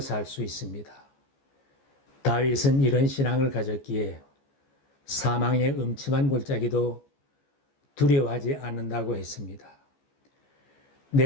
살 수 있습니다. 다윗은 이런 신앙을 가졌기에 사망의 음침한 골짜기도 두려워하지 않는다고 했습니다.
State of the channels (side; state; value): right; late; 14 ms